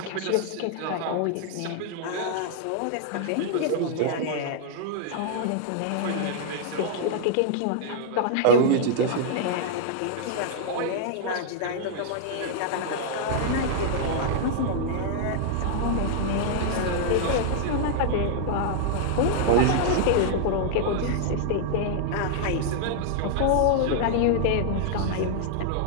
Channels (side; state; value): both; different; correlation -0.01